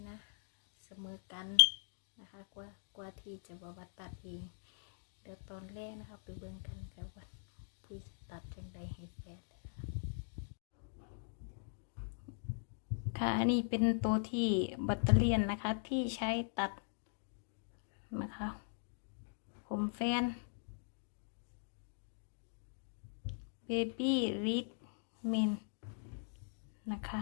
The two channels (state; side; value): silent; right; digital silence